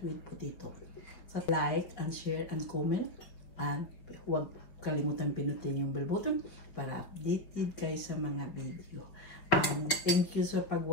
with potato. So like and share and comment. And huwag kalimutan pinutin yung bell button para updated kayo sa mga video. And thank you sa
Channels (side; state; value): right; late; 5.5 ms